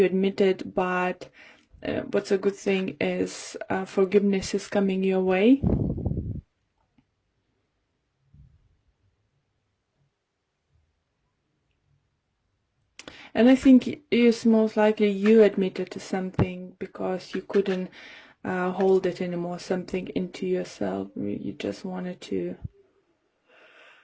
admitted, but what's a good thing is forgiveness is coming your way. And I think it's most likely you admitted to something because you couldn't hold it anymore, something into yourself. You just wanted to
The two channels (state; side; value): identical; both; correlation 1.00